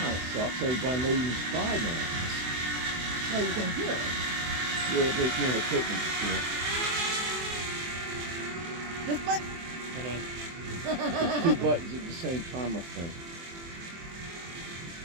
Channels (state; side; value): late; left; 24 ms